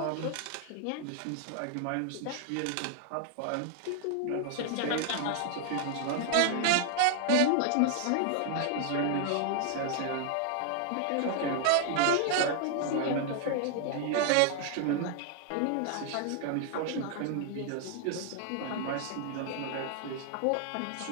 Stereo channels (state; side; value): different; both; correlation 0.00